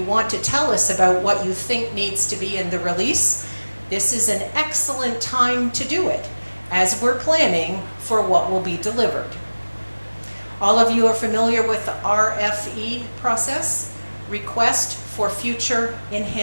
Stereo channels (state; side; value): inverted; both; correlation -1.00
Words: want to tell us about what you think needs to be in the release, this is an excellent time to do it as we're planning for what will be delivered. All of you are familiar with the RFE process, Request for Future